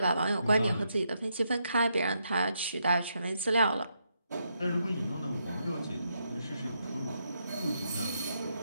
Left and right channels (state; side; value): inverted; both; correlation -0.79